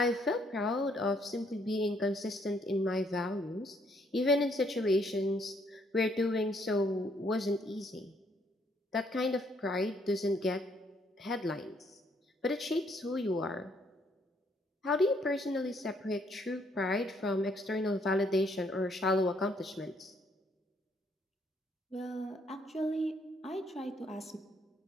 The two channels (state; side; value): normal; both; correlation 0.69